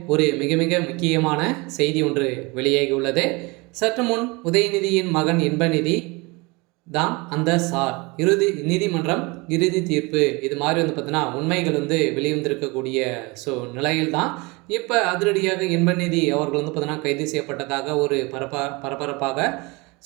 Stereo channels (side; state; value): left; quieter; 26.1 dB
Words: ஒரு மிக மிக முக்கியமான செய்தி ஒன்று வெளியாகி உள்ளது. சற்று முன் உதயநிதியின் மகன் இன்பநிதி தான் அந்த சார் நீதிமன்றம் இறுதி தீர்ப்பு இது மாதிரி பார்த்தீங்கன்னா உண்மைகள் வெளிவந்திருக்கக்கூடிய நிலையில் தான் இப்போ அதிரடியாக இன்பநிதி அவர்கள் பார்த்தீங்கன்னா கைது செய்யப்பட்டதாக ஒரு பரபரப்பாக